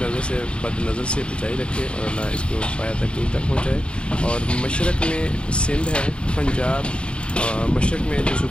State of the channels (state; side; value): late; right; 0.056 ms